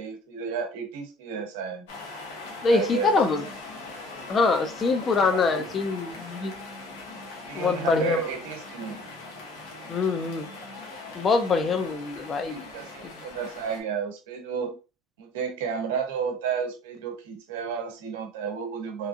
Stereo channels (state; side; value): normal; both; correlation 0.51